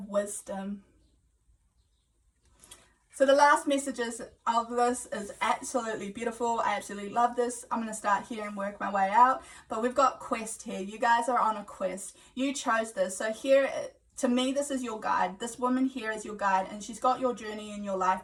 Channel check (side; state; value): both; identical; correlation 1.00